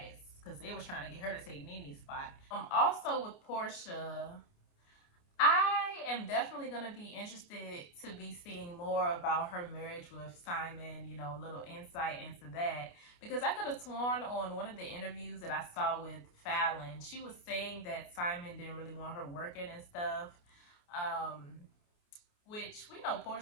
because they was trying to get her to take Nene's spot. Also with Porsha, I am definitely going to be interested to be seeing more about her marriage with Simon, you know, a little insight into that. Because I could have sworn on one of the interviews that I saw with Fallon, she was saying that Simon didn't really want her working and stuff. Which we know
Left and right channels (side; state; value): right; late; 29 ms